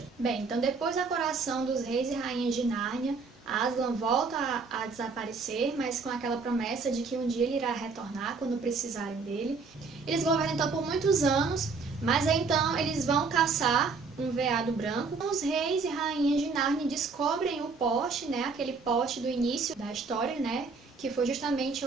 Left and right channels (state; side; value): quieter; left; 4.6 dB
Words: Bem, então depois da coroação dos reis e rainhas de Nárnia, Aslan volta a desaparecer, mas com aquela promessa de que um dia ele irá retornar quando precisarem dele. Eles governam então por muitos anos, mas aí então eles vão caçar um veado branco. Os reis e rainhas de Nárnia descobrem o poste, né, aquele poste do início da história, né, que foi justamente